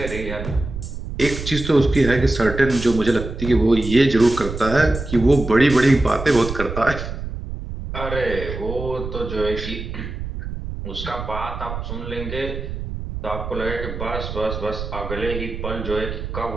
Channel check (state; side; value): noise; right; rumble, 7 dB below the sound